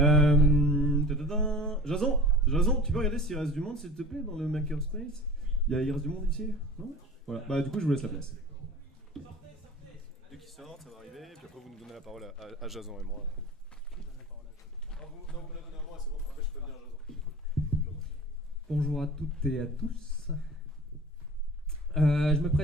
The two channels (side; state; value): both; normal; correlation 0.39